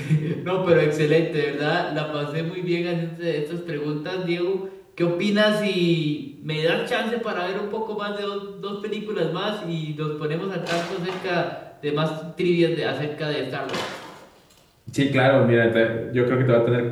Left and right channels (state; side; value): identical; both; correlation 1.00